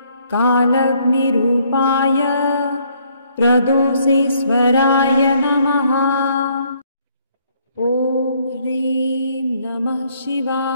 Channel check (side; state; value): both; inverted; correlation -0.66